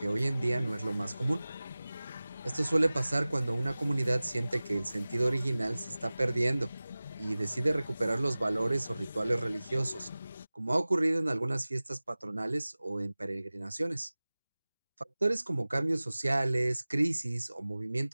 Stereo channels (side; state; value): both; inverted; correlation -0.98